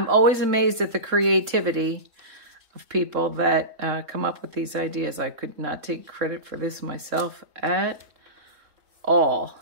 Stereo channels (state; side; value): late; left; 3.7 ms